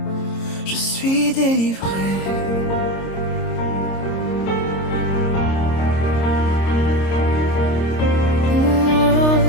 je suis délivré.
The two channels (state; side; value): late; right; 26 ms